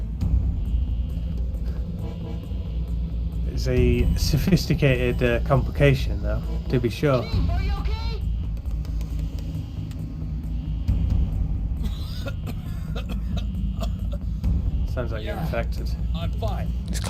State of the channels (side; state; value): both; identical; correlation 1.00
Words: It's a sophisticated complication, though, to be sure. Sounds like you're infected. I'm fine. He's